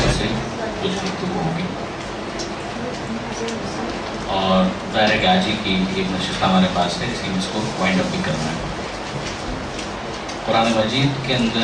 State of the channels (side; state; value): both; identical; correlation 1.00